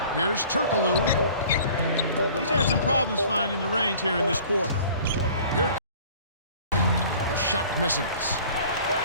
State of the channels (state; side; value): inverted; both; correlation -0.49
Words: Here's Turkoglu. He's had some problems finding the range here in this quarter. Here the shot misses.